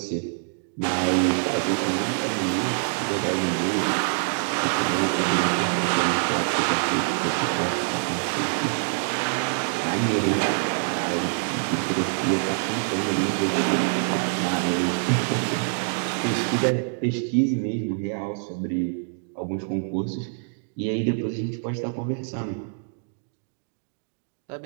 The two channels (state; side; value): silent; left; digital silence